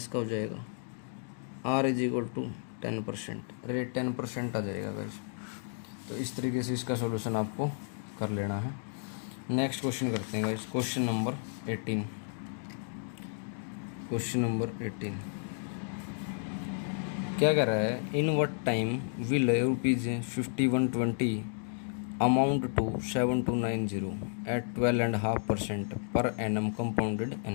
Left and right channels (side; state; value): right; silent; 56 dB below the other